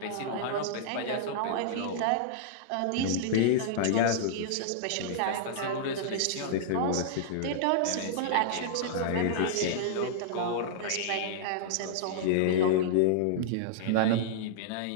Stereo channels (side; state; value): both; different; correlation -0.02